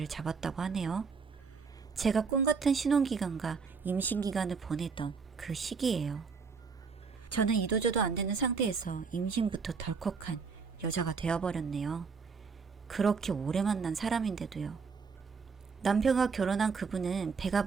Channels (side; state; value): left; quieter; 5.3 dB